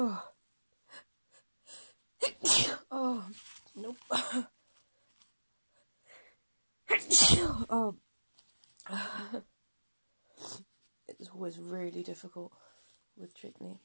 Oh, nope. Oh. It's always really difficult with chickpea.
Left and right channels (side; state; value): both; inverted; correlation -1.00